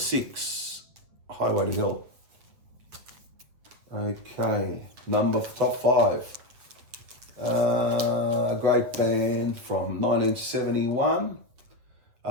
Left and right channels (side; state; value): left; late; 8.0 ms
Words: Highway to Hell. Okay, top five. A great band from 1971.